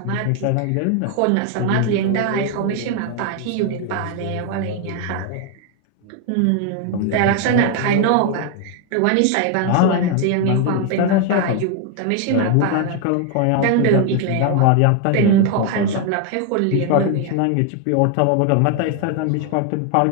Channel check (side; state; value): both; different; correlation 0.01